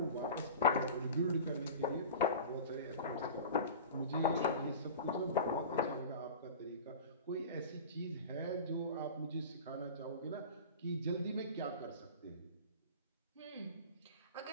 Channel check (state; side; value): inverted; both; correlation -0.35